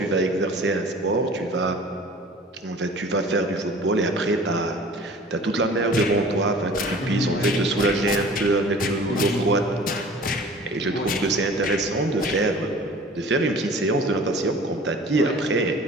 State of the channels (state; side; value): normal; both; correlation 0.45